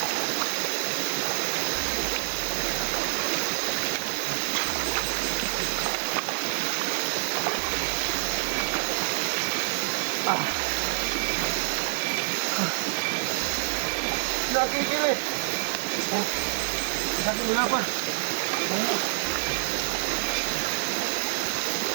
Nakikili. Sabi wala pa.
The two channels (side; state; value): left; silent; digital silence